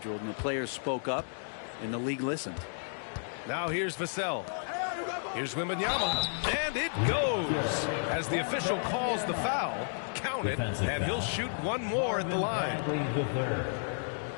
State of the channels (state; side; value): silent; right; digital silence